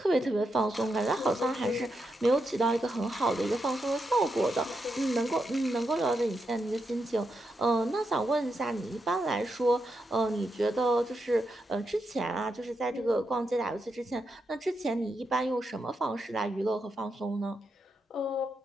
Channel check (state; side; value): normal; both; correlation 0.84